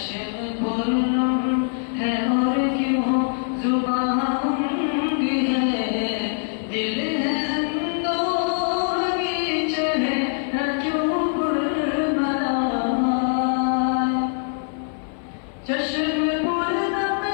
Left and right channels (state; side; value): silent; right; 57 dB below the other